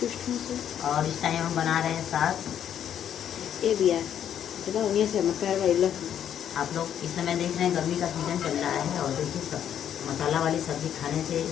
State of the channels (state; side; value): quieter; right; 9.6 dB